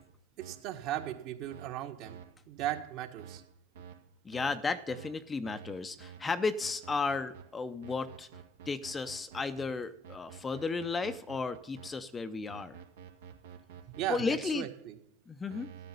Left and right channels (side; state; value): both; normal; correlation 0.69